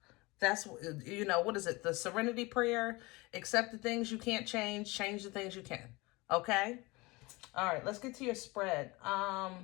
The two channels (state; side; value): quieter; right; 23.7 dB